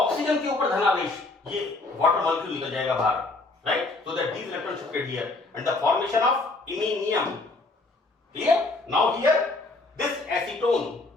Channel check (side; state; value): right; quieter; 3.3 dB